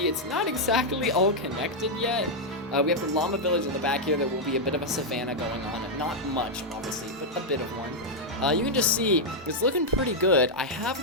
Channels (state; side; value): normal; both; correlation -0.03